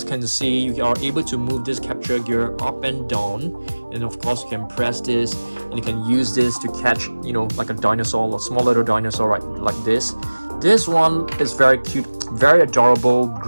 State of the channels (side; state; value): both; inverted; correlation -1.00